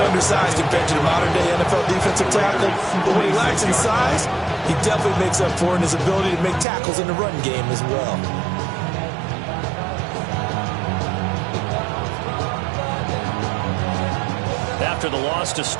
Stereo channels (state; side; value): drops out; left; at 6.7 s